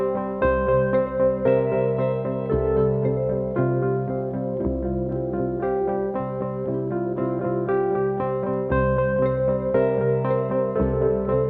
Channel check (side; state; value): both; identical; correlation 1.00